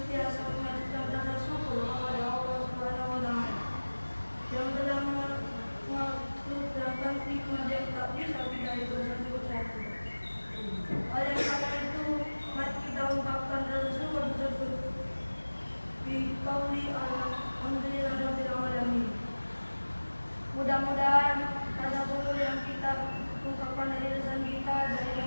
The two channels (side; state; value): both; inverted; correlation -1.00